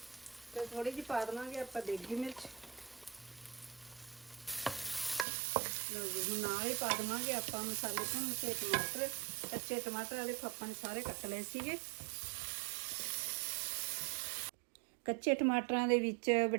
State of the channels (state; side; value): drops out; left; at 5.2 s